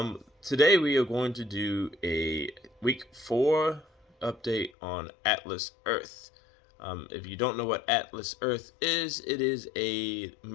Today we are going to do a week 4 update on Atlas Earth. If you don't know what Atlas Earth is, it is a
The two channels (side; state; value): right; drops out; at 4.7 s